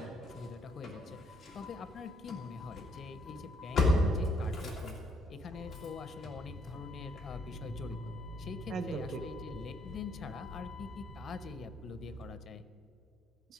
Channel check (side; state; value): both; normal; correlation 0.70